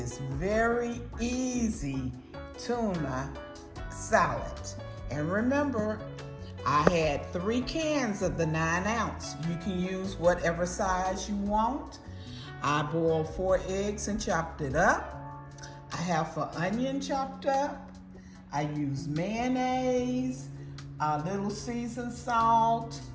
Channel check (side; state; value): both; identical; correlation 1.00